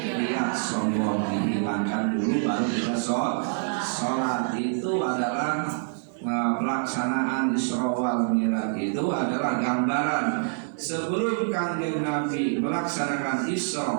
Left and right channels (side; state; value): left; silent; digital silence